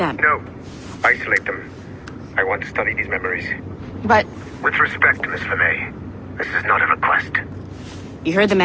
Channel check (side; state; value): both; identical; correlation 1.00